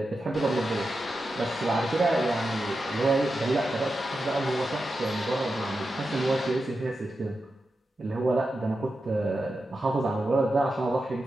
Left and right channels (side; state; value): both; normal; correlation 0.90